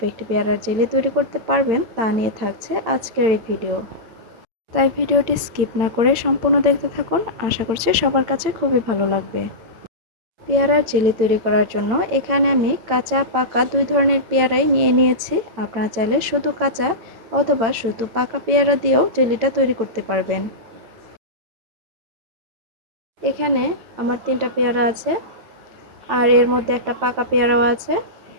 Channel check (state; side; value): late; left; 8.8 ms